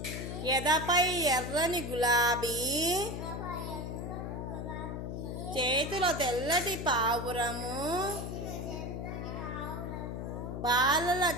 ఎదపై ఎర్రని గులాబీ, చేతిలో తెల్లటి పావురము, బాలల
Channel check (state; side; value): noise; left; hum, 5 dB below the sound